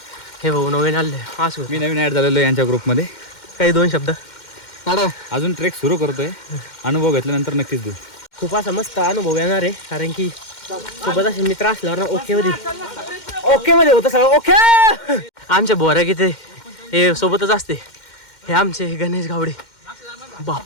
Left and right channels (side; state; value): right; late; 2.1 ms